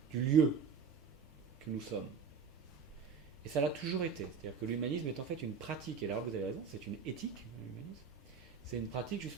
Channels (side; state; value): left; quieter; 5.8 dB